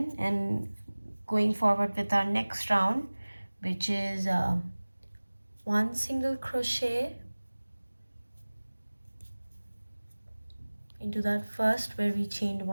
and going forward with our next round, which is 1 single crochet into that first where we chained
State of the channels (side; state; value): both; inverted; correlation -1.00